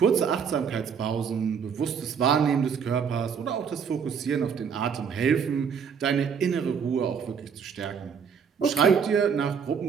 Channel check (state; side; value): quieter; left; 6.8 dB